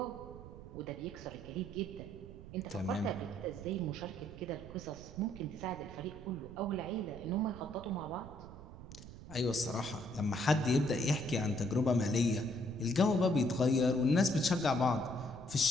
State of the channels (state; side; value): noise; right; rumble, 14 dB below the sound